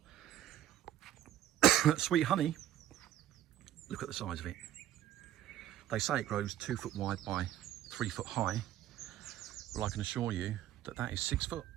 Sweet Honey, look at the size of it. They say it grows 2 foot wide by 3 foot high. Well, I can assure you that is 6 foot.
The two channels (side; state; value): left; quieter; 12.3 dB